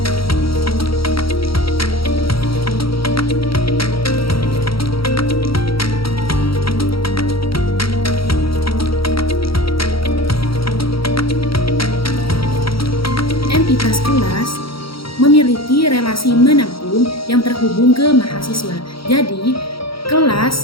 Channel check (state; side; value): late; right; 0.75 ms